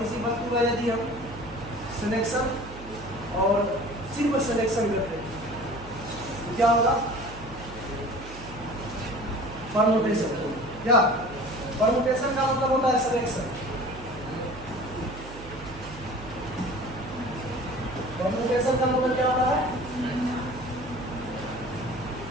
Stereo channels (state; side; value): noise; right; hum, 15 dB below the sound